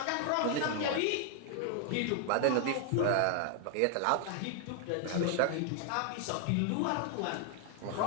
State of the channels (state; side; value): different; both; correlation 0.00